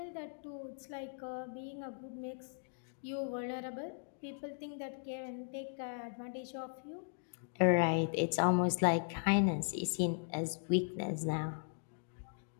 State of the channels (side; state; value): right; silent; digital silence